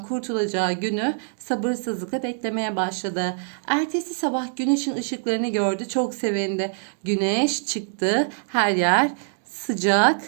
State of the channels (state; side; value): silent; left; 62 dB below the other